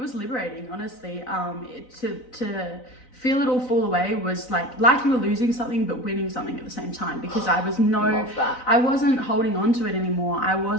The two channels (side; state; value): right; late; 4.0 ms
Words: liberating, honestly. To feel it all fall away was like you were losing something but winning something at the same time, because I wasn't holding on to it anymore. I